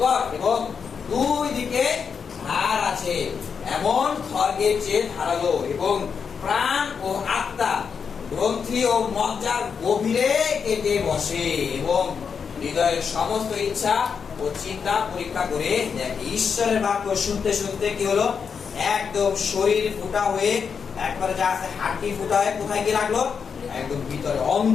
এবং দুই দিকে ধার আছে, এমন খড়গের চেয়ে ধারালো, এবং প্রাণ ও আত্মা, গ্রন্থি ও মজ্জার গভীরে কেটে বসে, এবং হৃদয়ের সমস্ত ইচ্ছা ও চিন্তা পরীক্ষা করে দেখে। ঈশ্বরের বাক্য শুনতে শুনতে কি হলো? একদম শরীর ফুটা হয়ে, একবারে যা আছে হাড়টি ফুটা হয়ে কোথায় গিয়ে লাগলো? একদম ভিতরে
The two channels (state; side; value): quieter; right; 6.3 dB